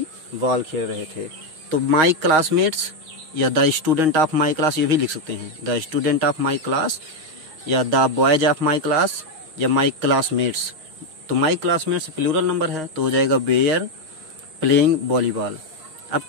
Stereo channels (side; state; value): left; late; 6.4 ms